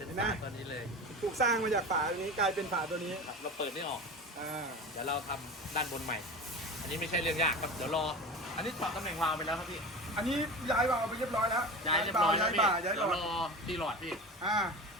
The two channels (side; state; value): both; normal; correlation 0.31